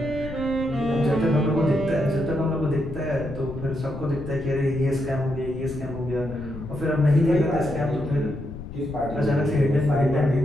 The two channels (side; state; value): left; noise; rumble, 11 dB below the sound